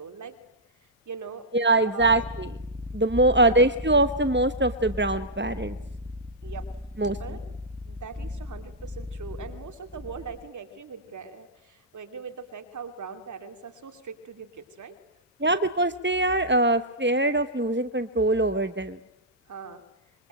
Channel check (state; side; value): normal; both; correlation -0.12